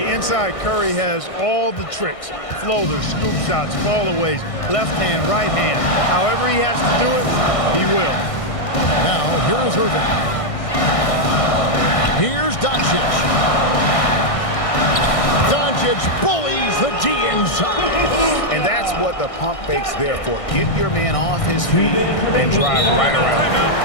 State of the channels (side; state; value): right; late; 1.6 ms